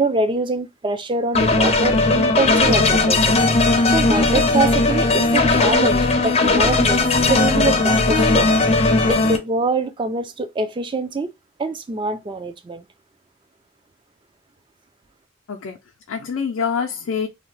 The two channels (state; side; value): normal; both; correlation 0.26